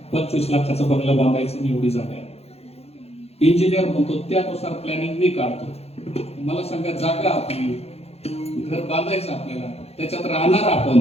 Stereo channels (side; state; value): right; late; 0.30 ms